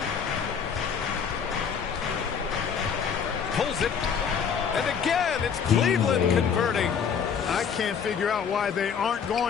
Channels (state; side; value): quieter; right; 6.9 dB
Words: Pulls it. And again, it's Cleveland converting. I can't figure out why they aren't